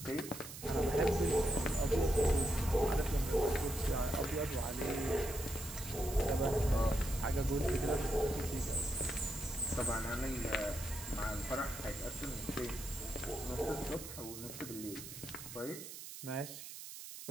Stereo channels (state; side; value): noise; right; hiss, 11 dB below the sound